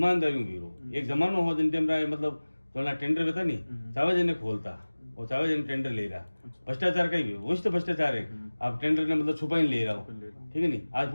में भी रो एक जमाना हो जिन टाइम मतलब थोड़ा टेंडर बेता नहीं चावे जने खोलता और चावे जने टेंडर ले रहा भ्रष्टाचार का ही वही तो भ्रष्टाचार है आप टेंडर ने मतलब छुपा ही ले रहा हो ठीक है नहीं आज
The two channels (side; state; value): both; inverted; correlation -1.00